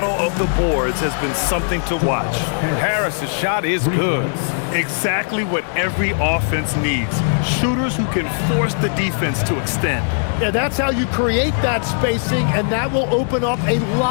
of the boards has been something to watch. Harris's shot is good. Exactly what every offense needs. Shooters who can force the defense to extend. Yeah, that's how you create that spacing, and that will open up a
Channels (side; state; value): right; silent; digital silence